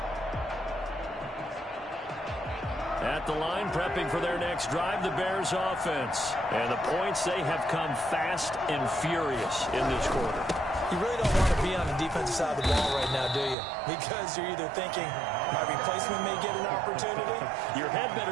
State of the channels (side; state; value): left; drops out; at 13.6 s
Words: At the line, prepping for their next drive, the Bears offense. And the points, they have come fast and furious in this quarter. You really don't want to be on the defensive side of the ball right now, do you? Because you're either thinking, my replacement may get an opportunity. Your head